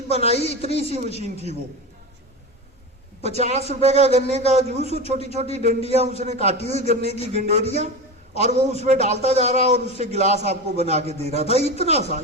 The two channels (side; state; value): both; normal; correlation 0.24